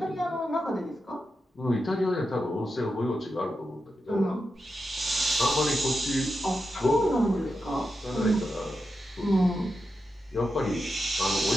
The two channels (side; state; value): both; normal; correlation 0.88